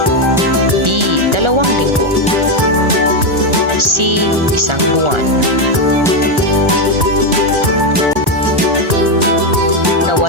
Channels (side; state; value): left; late; 1.4 ms